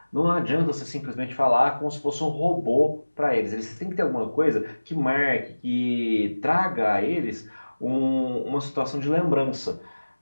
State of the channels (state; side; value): inverted; both; correlation -1.00